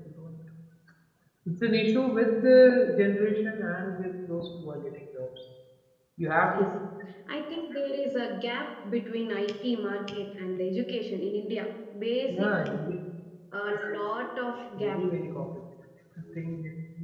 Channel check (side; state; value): both; identical; correlation 1.00